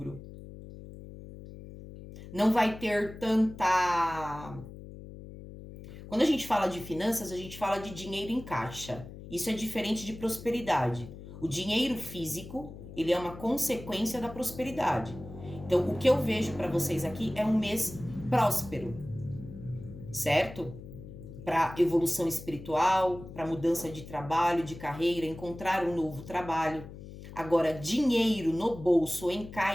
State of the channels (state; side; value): noise; left; hum, 14 dB below the sound